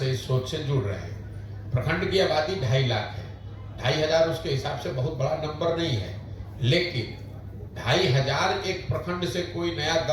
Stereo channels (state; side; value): identical; both; correlation 1.00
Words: इस सोच से जुड़ रहे हैं। प्रखंड की आबादी 2.5 लाख है, 2500 उसके हिसाब से बहुत बड़ा नंबर नहीं है, लेकिन 2500 एक प्रखंड से कोई नया